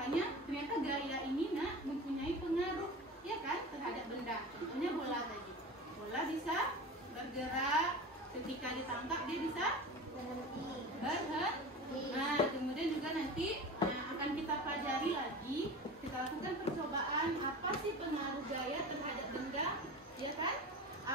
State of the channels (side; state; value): both; normal; correlation 0.33